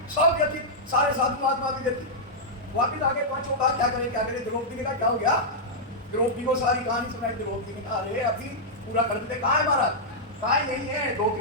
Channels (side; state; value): both; normal; correlation -0.08